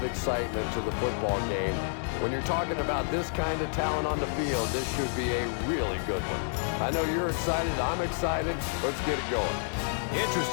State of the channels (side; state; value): right; silent; 57 dB below the other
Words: excitement to the football game. When you're talking about this kind of talent on the field, this should be a really good one. I know you're excited. I'm excited. Let's get it going.